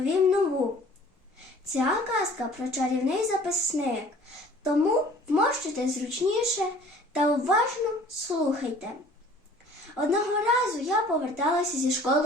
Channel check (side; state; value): both; normal; correlation 0.50